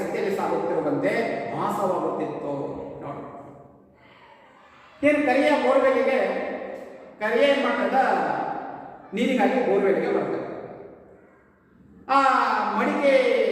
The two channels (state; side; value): identical; both; correlation 1.00